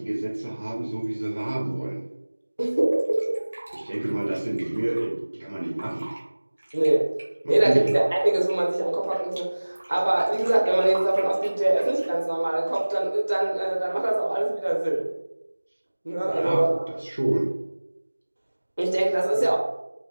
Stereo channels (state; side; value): inverted; both; correlation -1.00